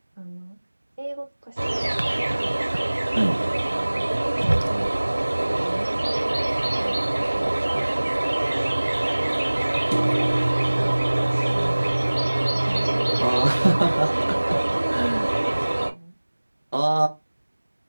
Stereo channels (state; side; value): inverted; both; correlation -1.00